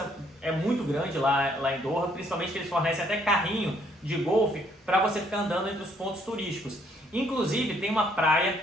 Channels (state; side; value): normal; both; correlation 0.67